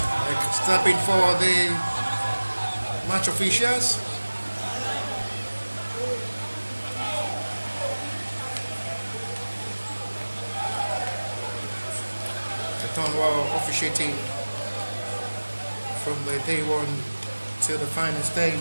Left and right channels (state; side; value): inverted; both; correlation -1.00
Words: stepping for the match officials. The Tonwell officiating from the day one to the final